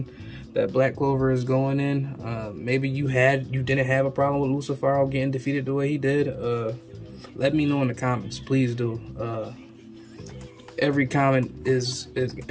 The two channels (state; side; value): identical; both; correlation 1.00